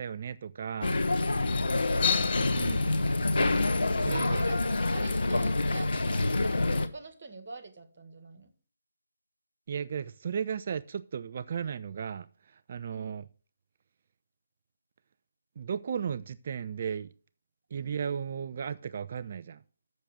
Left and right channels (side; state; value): both; inverted; correlation -0.86